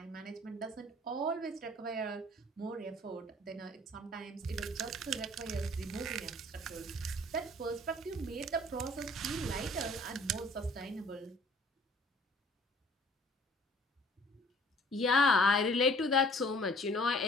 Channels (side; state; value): both; normal; correlation 0.54